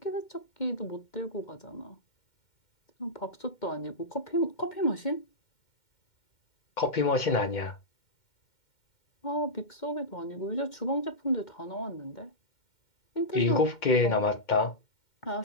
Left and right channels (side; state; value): right; late; 2.1 ms